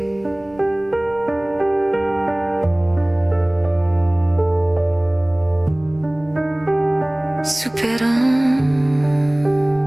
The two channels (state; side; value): noise; right; rumble, 26 dB below the sound